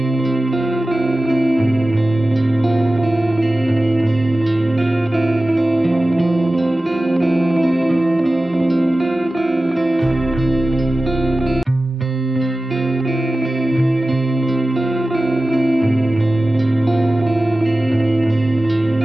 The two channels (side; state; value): both; normal; correlation 0.96